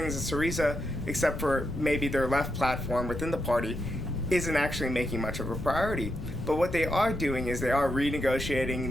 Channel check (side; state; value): left; noise; rumble, 7 dB below the sound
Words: that Syriza, except for maybe their left platform within the party, isn't actually making much of a priority. But what they are doing is they are